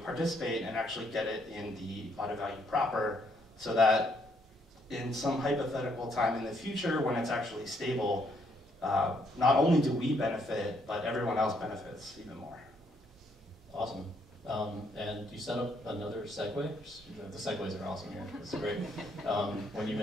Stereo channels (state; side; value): normal; both; correlation 0.71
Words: and actually get it in the auto value proper, so that in some hypothetical time in the future when it's actually stable, not only do we benefit, but everyone else benefits even more. Awesome. And you set up another segue. The segues are awesome here. It's great. When you